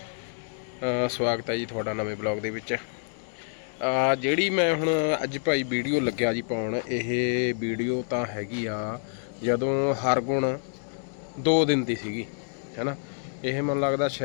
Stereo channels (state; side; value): silent; right; digital silence